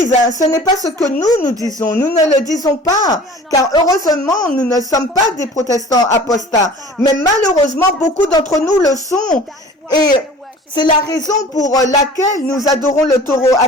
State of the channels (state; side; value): normal; both; correlation 0.45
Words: hein. Ce n'est pas ce que nous disons, nous ne le disons pas, car heureusement, nous ne sommes pas des protestants apostats, mais malheureusement, beaucoup d'entre nous le sont, et c'est la raison pour laquelle nous adorons le taureau